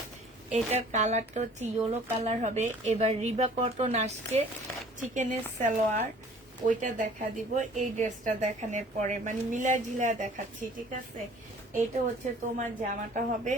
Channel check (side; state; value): both; normal; correlation 0.51